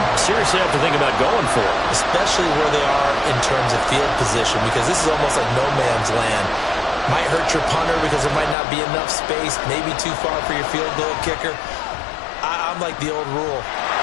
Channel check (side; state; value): right; drops out; at 8.6 s